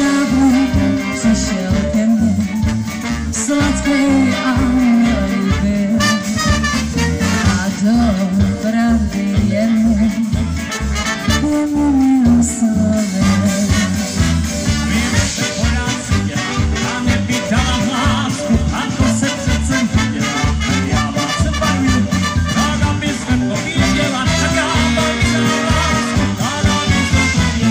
přišel ke mně sladký a líbý a do pravdy jen umím slovy.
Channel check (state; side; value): identical; both; correlation 1.00